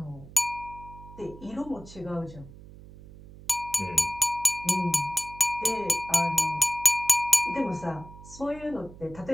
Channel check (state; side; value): noise; right; hum, 18 dB below the sound